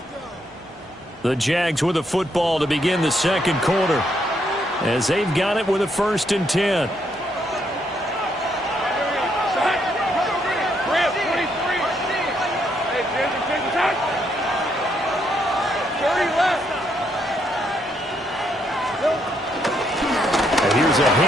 The Jags with the football to begin the 2nd quarter, as they've got it with a 1st and 10. Here's a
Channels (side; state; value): both; normal; correlation 0.75